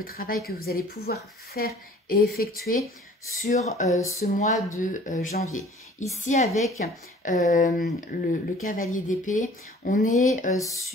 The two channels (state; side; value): normal; both; correlation 0.51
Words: travail que vous allez pouvoir faire et effectuer sur ce mois de janvier. Ici, avec le cavalier d'épée, on est